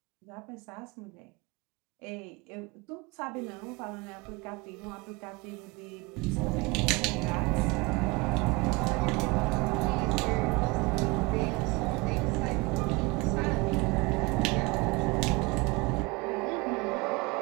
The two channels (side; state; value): left; quieter; 25.4 dB